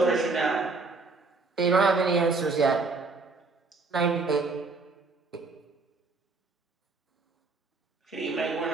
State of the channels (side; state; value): left; quieter; 3.9 dB